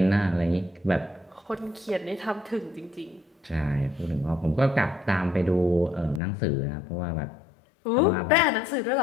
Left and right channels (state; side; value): drops out; right; at 6.2 s